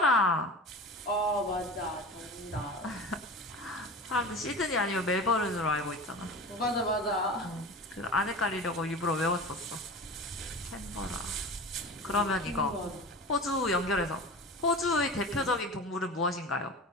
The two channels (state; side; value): normal; both; correlation 0.32